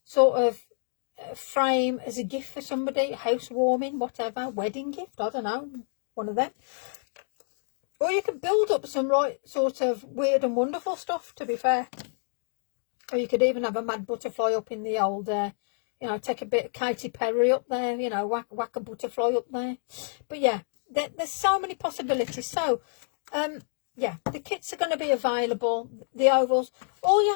sort of frame as a gift for somebody, housewarming, whatever, wedding gift, I don't know, one of them. Or you could build up some right sort of weird and wonderful stuff, to be fair. Or you could even have a mad butterfly up in the old, you know, take a bit of Katy Perry up there, you know, whack a butterfly up there. But yeah, there's so many possibilities. So, yeah, the kits are going to be available, the ovals. All you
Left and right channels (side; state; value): right; silent; digital silence